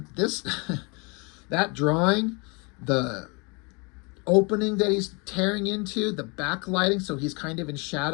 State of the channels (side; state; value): right; quieter; 30.7 dB